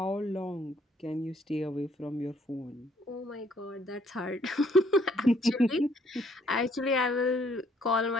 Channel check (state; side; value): normal; both; correlation 0.65